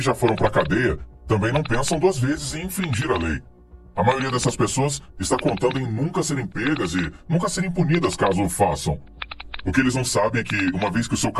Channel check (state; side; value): identical; both; correlation 1.00